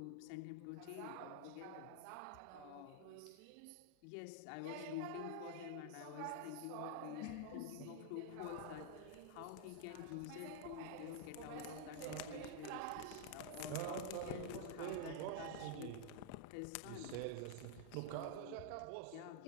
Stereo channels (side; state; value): both; different; correlation 0.00